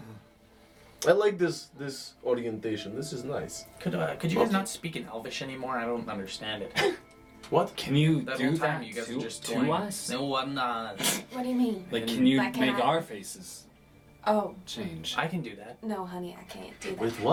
I like this orientation. This is nice. Could you guys not speak in Elvish anymore? I don't understand it. What? Can you That do whole time that you guys to, are just to toying. us? No, I'm not. What do you mean? Like, can you Like, can make I- our faces Oh, change? I can do that. no, honey, I can't do that. With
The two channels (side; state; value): both; identical; correlation 1.00